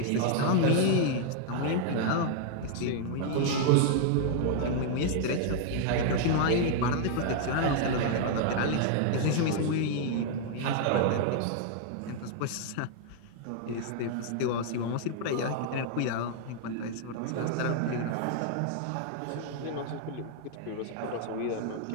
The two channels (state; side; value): different; both; correlation 0.00